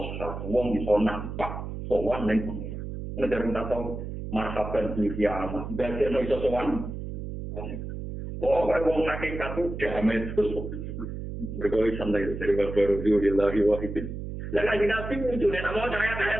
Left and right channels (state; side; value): noise; right; hum, 7 dB below the sound